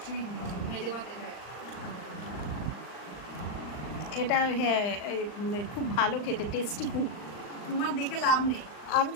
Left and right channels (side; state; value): right; late; 39 ms